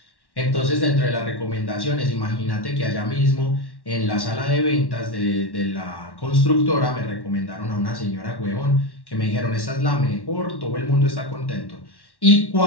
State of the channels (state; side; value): late; right; 1.1 ms